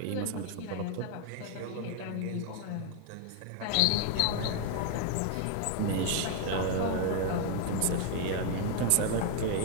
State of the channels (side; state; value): both; different; correlation 0.00